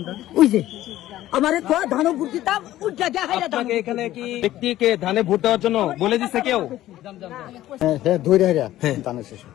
ওই যে আমারে ধানও ভোট দিতাম উজ্জা দেখাই। আপনাকে এখানে কি ব্যক্তিকে ধানে ভোট দেওয়ার জন্য বলে দিছে কেউ? হ্যাঁ ধরে ধানের শেষ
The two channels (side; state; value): right; quieter; 14.3 dB